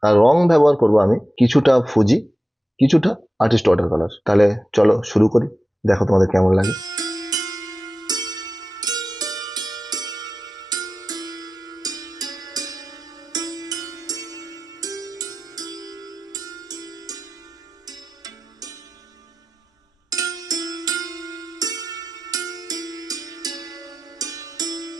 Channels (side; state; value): both; normal; correlation 0.94